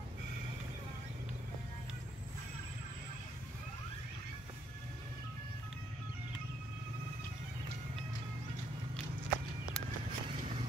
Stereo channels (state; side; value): normal; both; correlation 0.72